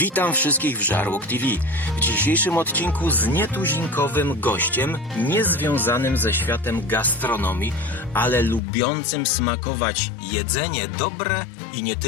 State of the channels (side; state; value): right; drops out; at 8.6 s